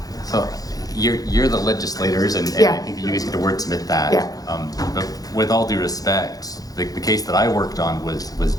So you're the legislators, and Yeah. I think you guys get to wordsmith that. Yeah. But with all due respect, the case that I worked on was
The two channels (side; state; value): right; late; 0.18 ms